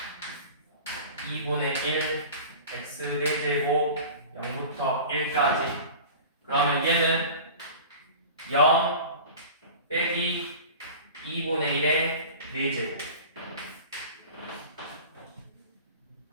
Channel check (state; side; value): inverted; both; correlation -0.37